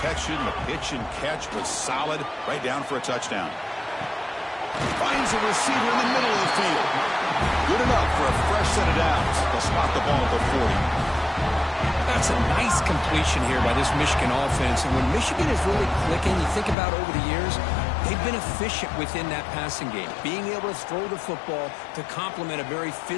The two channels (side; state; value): right; drops out; at 16.8 s